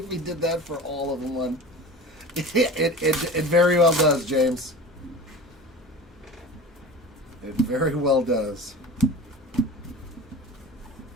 he did that for all of them. It very well does, James. It very well does.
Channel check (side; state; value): both; normal; correlation 0.35